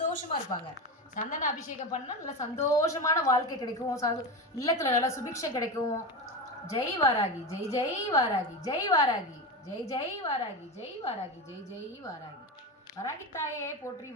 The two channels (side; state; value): both; normal; correlation 0.21